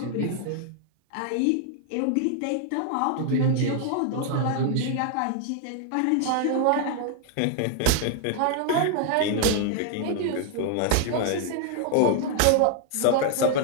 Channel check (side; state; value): both; different; correlation 0.00